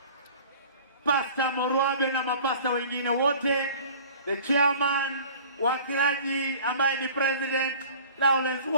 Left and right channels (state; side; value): inverted; both; correlation -0.45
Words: Pastor Morwabe na mapasta wengine wote, the chairman, wakilaji ambaye ni President Lawrence,